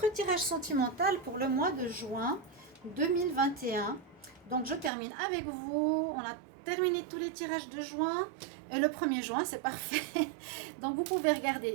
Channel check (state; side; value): drops out; left; at 4.9 s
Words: tirage sentimental pour le mois de juin 2021. Donc je termine avec vous, on a terminé tous les tirages de juin et le 1er juin c'est parfait. Donc vous pouvez